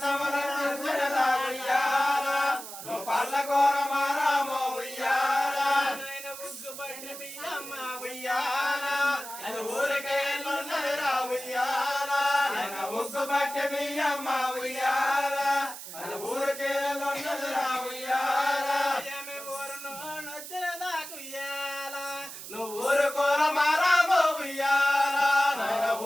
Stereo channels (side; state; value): right; noise; hiss, 11 dB below the sound